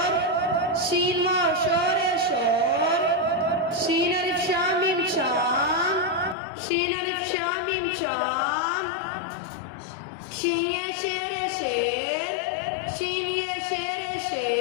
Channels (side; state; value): right; drops out; at 6.4 s